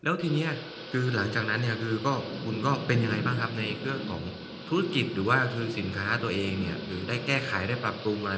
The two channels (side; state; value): both; identical; correlation 1.00